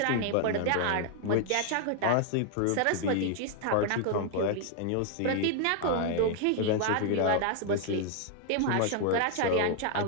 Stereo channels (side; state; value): both; different; correlation 0.00